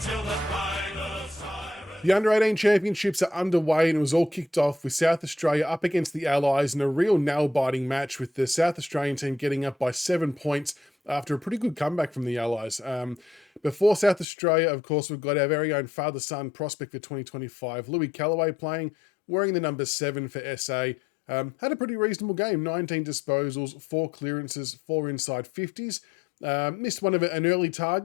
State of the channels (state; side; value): drops out; right; at 14.2 s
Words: the final siren. The Under-18 Championships are underway and it was all kicked off with South Australia up against the Allies in a real nail-biting match, with the South Australian team getting up by 7 points after a pretty good comeback from the Allies. Before South Australia, of course, we've got our very own father-son prospect for 2025, Louis Kellaway, playing, wearing the number 7 for SA. Had a pretty reasonable game, 19 disposals, 4 clearances, 4 inside 50s. Missed one of an early